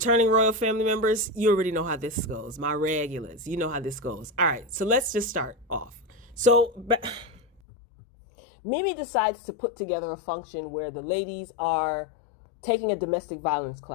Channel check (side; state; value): right; drops out; at 7.6 s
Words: royal family members, you already know how this goes. My regulars, you know how this goes. All right, so let's just start off. Mimi decides to put together a function where the ladies are taking a domestic violence